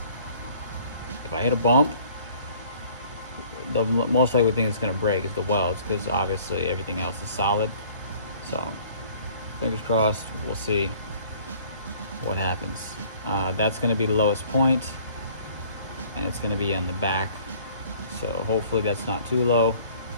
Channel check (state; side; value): inverted; both; correlation -0.55